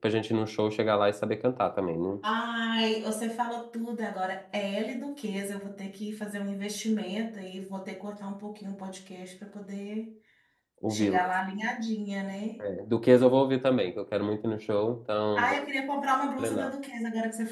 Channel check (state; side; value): identical; both; correlation 1.00